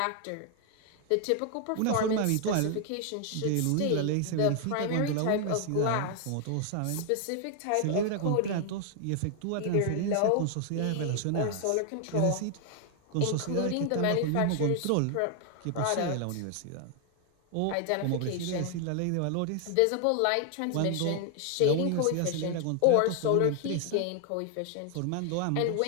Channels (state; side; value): different; both; correlation 0.00